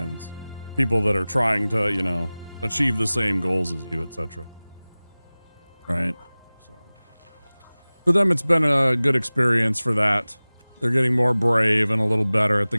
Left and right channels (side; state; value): both; inverted; correlation -0.99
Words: people that are trying to, you know, achieve the same goals as you, etc. Right? So for them, it's been a good experience for that. They're getting more brave and a little better at the